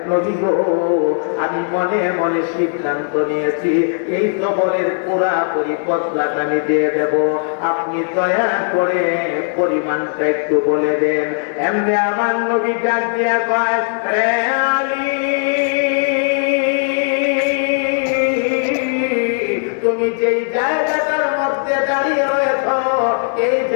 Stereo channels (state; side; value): silent; right; digital silence